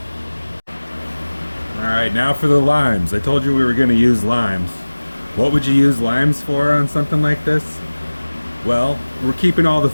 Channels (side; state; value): both; inverted; correlation -1.00